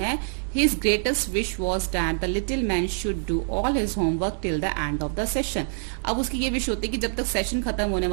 His greatest wish was that the little man should do all his homework till the end of the session. अब उसकी ये विश होती है कि जब तक सेशन खत्म होने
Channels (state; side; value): silent; left; 58 dB below the other